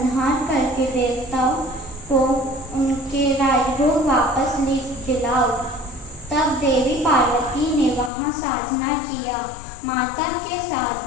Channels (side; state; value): right; drops out; at 8.1 s